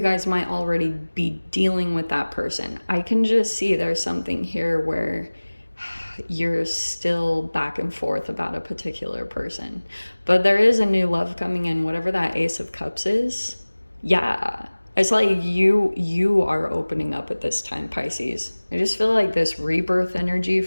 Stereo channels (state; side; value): inverted; both; correlation -1.00